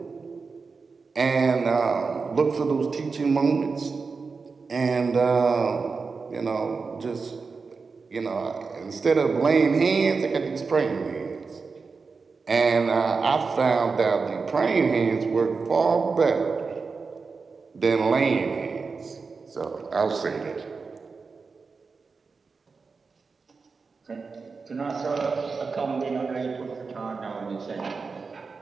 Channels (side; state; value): left; quieter; 4.7 dB